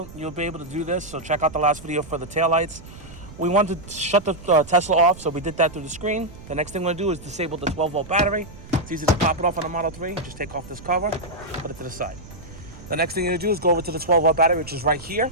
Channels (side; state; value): right; noise; rumble, 17 dB below the sound